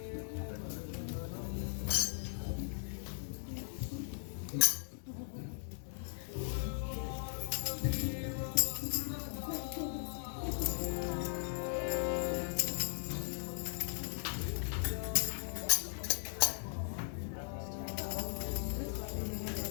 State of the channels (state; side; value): silent; right; digital silence